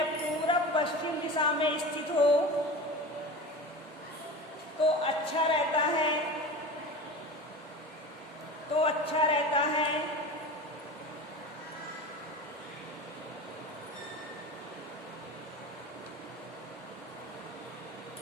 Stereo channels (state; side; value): normal; both; correlation 0.31